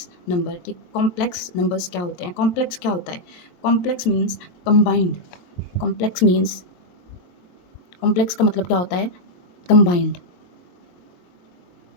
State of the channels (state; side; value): late; right; 23 ms